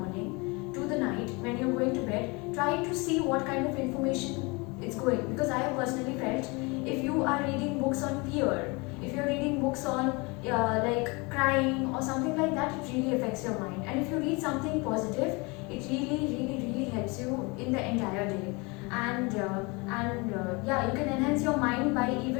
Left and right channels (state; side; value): quieter; right; 27.6 dB